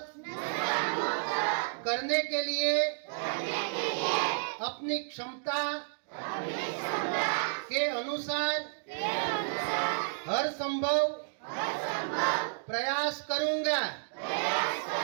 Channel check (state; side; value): silent; left; digital silence